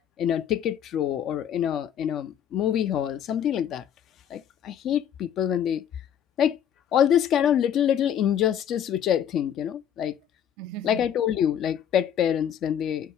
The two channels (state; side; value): quieter; right; 9.3 dB